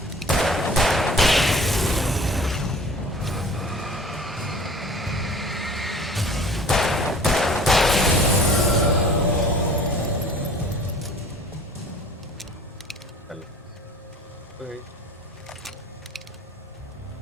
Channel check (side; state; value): both; normal; correlation 0.46